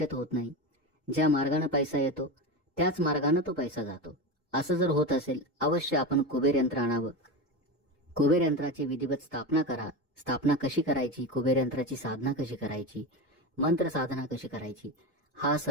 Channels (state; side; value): normal; both; correlation 0.21